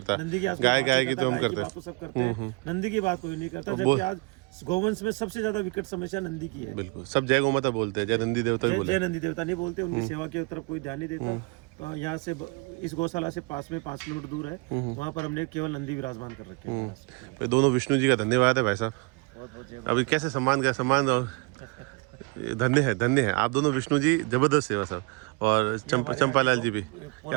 नंदी की आज कोई गाय बात गाय नहीं की करता, तो हम गाय की करते बात तो सब करते हैं, नंदी की बात कोई नहीं करता, जबकि आज गौवंश में सबसे ज्यादा विकट समस्या नंदी की है। बिल्कुल, सब जय गौ माता बोलते हैं, जय नंदी देवता भी बोलते जय नंदी देवता नहीं बोलते, उनकी सेवा की तरफ कोई ध्यान नहीं देता। तो यहाँ से इस गौशाला से पास में 5 किलोमीटर दूर है, वहाँ पर हमने केवल नंदी विराजमान कर रखे हैं। हैं। दोनों विष्णु जी का धन्यवाद है भाई साहब। अभी कैसे सम्मान का सम्मान और धन्य है आप दोनों विष्णु जी, जबरदस्त सेवा साहब। और चंपालाल जी भी,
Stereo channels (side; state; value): left; quieter; 28.7 dB